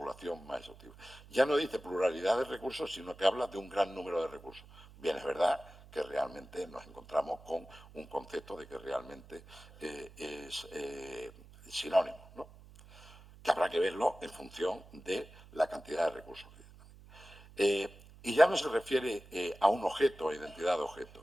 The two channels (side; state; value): right; noise; hum, 21 dB below the sound